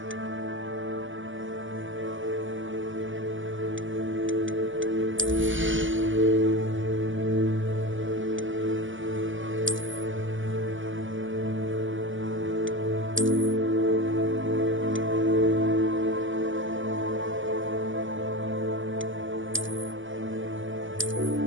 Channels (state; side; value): late; left; 0.56 ms